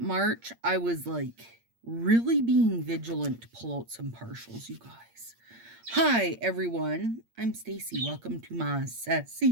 I was like really being vigilant to pull out some partials, you guys. Hi, everyone. I'm Stacy. Welcome to my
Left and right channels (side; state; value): left; late; 8.7 ms